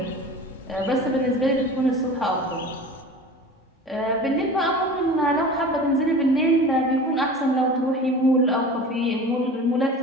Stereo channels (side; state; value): both; normal; correlation 0.37